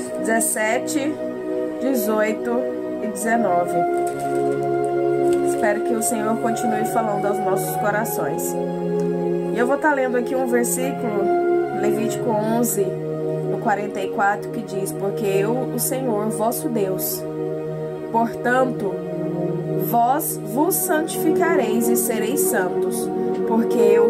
17, 18 e 19. Espero que o Senhor continue falando aos nossos corações. E eu vou estar lendo aqui um versículo, Levítico 11, no 44, que diz: porque eu, o Senhor, vosso Deus, portanto, vós vos santificareis e sereis santos, porque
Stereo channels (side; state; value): both; identical; correlation 1.00